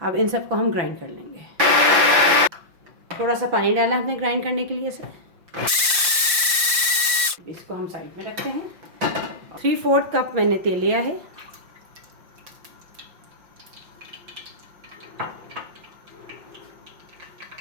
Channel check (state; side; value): late; left; 5.7 ms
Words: अब इन सबको हम ग्राइंड कर लेंगे। थोड़ा सा पानी डाला हमने ग्राइंड करने के लिए इसे। इसको हम साइड में रखते हैं। 3/4 कप मैंने तेल लिया है।